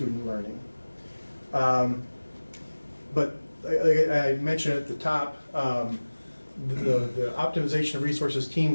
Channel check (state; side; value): inverted; both; correlation -1.00